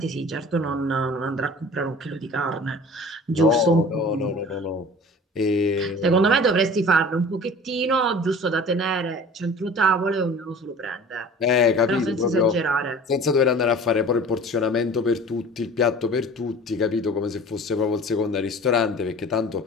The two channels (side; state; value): both; normal; correlation 0.43